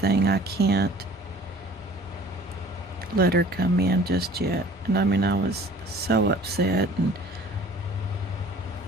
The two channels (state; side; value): normal; both; correlation 0.49